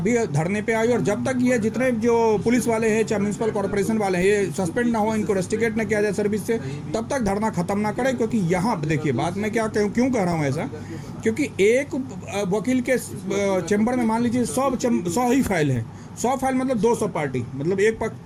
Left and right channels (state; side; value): identical; both; correlation 1.00